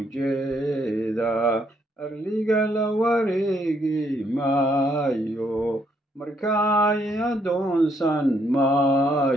arliga la wareegi maayo markaay adoonsan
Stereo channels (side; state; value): both; normal; correlation 0.72